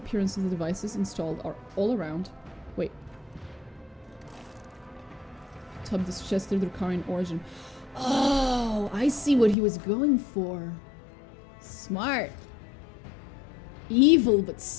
of the devices installed are all around. Wait. Tub suggested Drakarian origin. Oh, I see what he was going for. Smart. Evil, but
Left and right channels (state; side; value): drops out; right; at 9.6 s